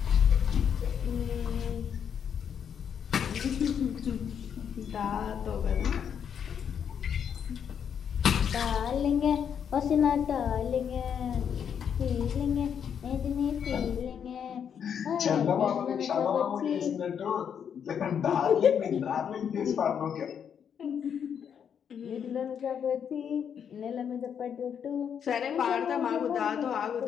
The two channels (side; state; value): right; quieter; 7.9 dB